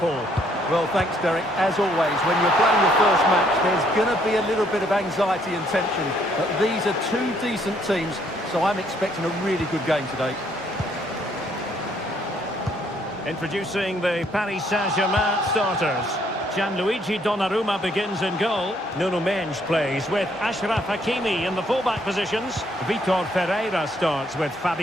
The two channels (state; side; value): normal; both; correlation 0.68